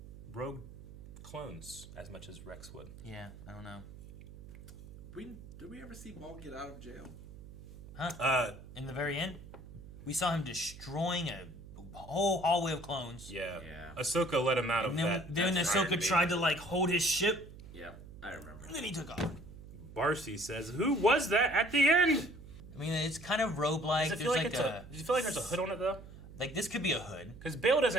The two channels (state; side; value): noise; right; hum, 16 dB below the sound